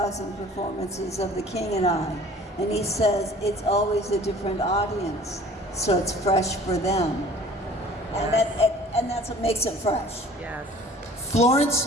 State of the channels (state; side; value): normal; both; correlation 0.48